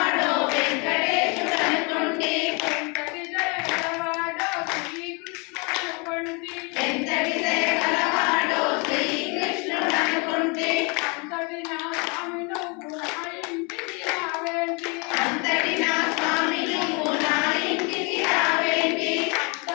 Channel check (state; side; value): quieter; right; 31.5 dB